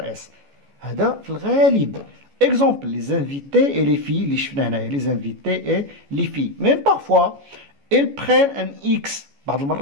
اس. هذا في الغالب. Exemple, les invités et les filles اللي شفنا هنايا les invités et les filles. Même parfois, ils prennent un X. بعض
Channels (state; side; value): late; left; 14 ms